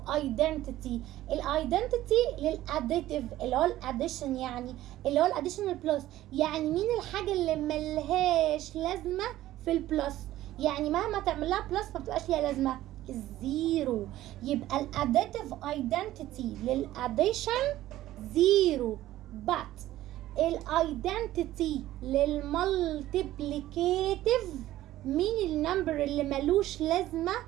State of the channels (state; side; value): quieter; left; 14.7 dB